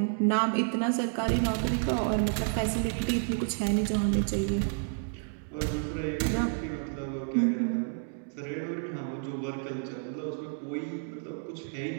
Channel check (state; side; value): silent; left; 58 dB below the other